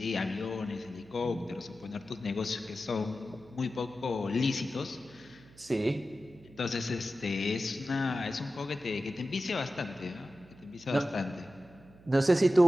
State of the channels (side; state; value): right; noise; hum, 23 dB below the sound